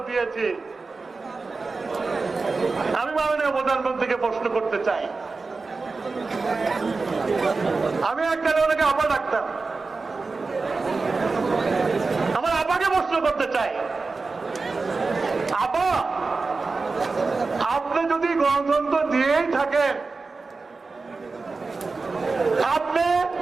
দিয়েছি। আমি মাননীয় প্রধানমন্ত্রীকে প্রশ্ন করতে চাই, আমি এককালে ওনাকে আপা ডাকতাম, আমার আপাকে প্রশ্ন করতে চাই, আপা আপনি যদি গণতন্ত্র দিয়েই থাকেন, আপনি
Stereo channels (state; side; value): quieter; left; 4.0 dB